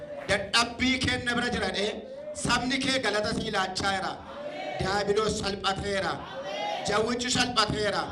dadhabbii kenna bira jirane sabni kee galata sii laachaa jira daabiloos salphateera jawwichi salphateera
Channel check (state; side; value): identical; both; correlation 1.00